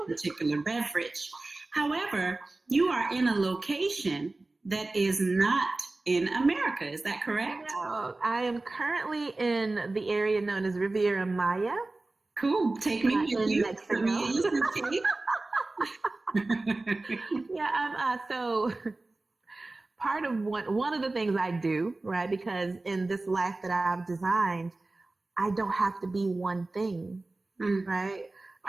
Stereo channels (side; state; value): left; quieter; 3.1 dB